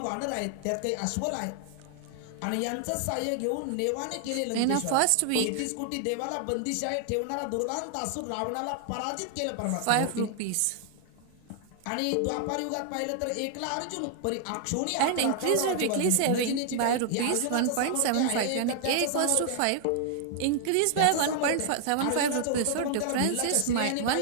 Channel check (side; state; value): both; different; correlation -0.01